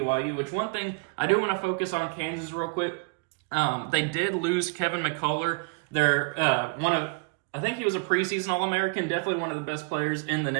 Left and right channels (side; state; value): left; quieter; 31.9 dB